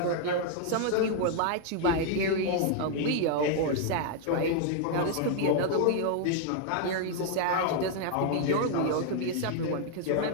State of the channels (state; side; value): different; both; correlation 0.00